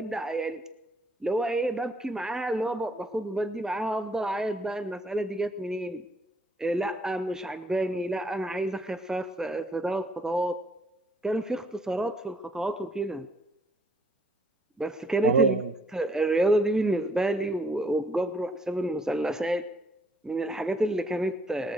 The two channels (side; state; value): both; normal; correlation 0.67